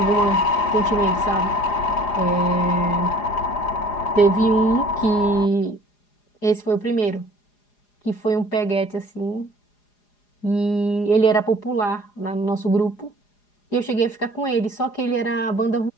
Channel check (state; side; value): late; right; 4.9 ms